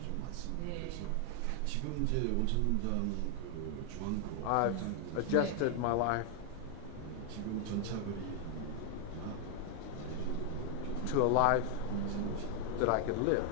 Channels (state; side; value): different; both; correlation 0.00